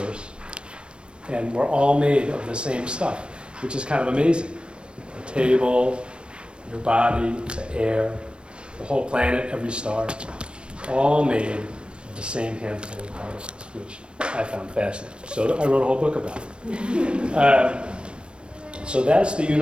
and we're all made of the same stuff, which is kind of amazing. The table, your body, the air, the whole planet, every star, all made of the same handful of particles, which I found fascinating. So I wrote a whole book about it. So that's the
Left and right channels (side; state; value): left; late; 0.057 ms